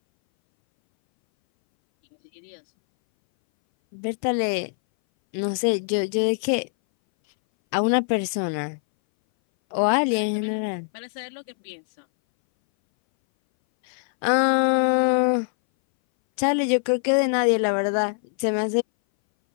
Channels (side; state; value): right; silent; 61 dB below the other